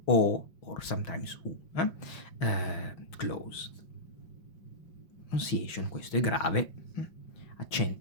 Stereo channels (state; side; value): late; right; 5.8 ms